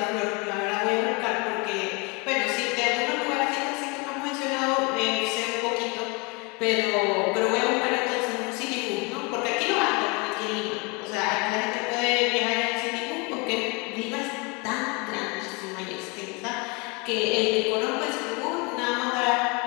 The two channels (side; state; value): right; quieter; 29.6 dB